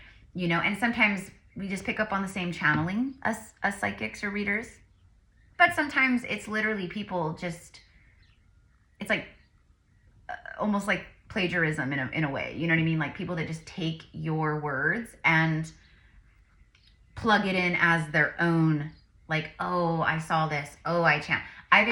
you know. And sometimes we just pick up on the same channeling as psychics or readers. But sometimes it's literally people just, it's like almost like plagiarism in a way, you know what I mean? Like people that just take your words and plug it in as their own, like, oh, I saw this, oh, I've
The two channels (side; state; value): both; identical; correlation 1.00